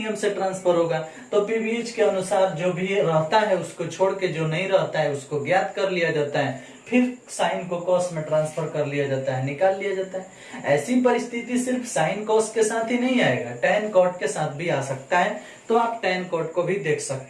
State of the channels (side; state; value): both; identical; correlation 1.00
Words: से ट्रांसफर होगा, तो पीवीएच के अनुसार जो भी रहता है उसको छोड़ के जो नहीं रहता है उसको ज्ञात कर लिया जाता है, फिर साइन को कॉस में ट्रांसफर कर लिया जाता है, निकाल लिया जाता है। ऐसी परिस्थिति सिर्फ साइन कॉस के साथ ही नहीं आएगा, टैन कॉट के साथ भी आ सकता है, तो आप टैन कॉट को भी देख